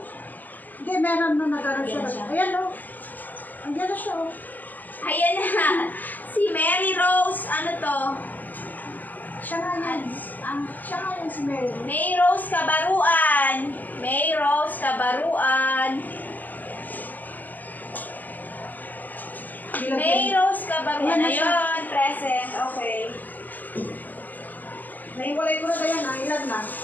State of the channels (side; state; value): right; late; 0.084 ms